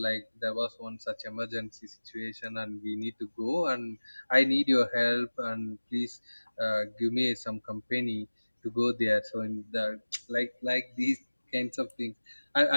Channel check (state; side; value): inverted; both; correlation -1.00